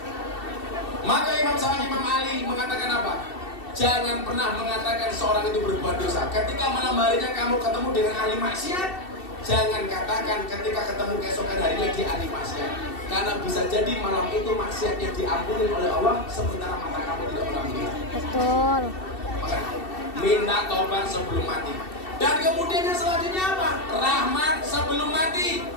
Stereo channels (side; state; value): right; late; 2.7 ms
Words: Maka Imam Ali mengatakan apa? Jangan pernah mengatakan seorang itu berbuat dosa. Ketika malam harinya kamu ketemu dengan ahli maksiat, jangan katakan ketika ketemu keesokan harinya di ahli maksiat. Karena bisa jadi malam itu maksiatnya diampuni oleh Allah, sementara mata kamu tidak pernah melihat. Betul. Maka minta taubat sebelum mati. Dan kemudian yang selanjutnya apa? Rahmat sebelum mati.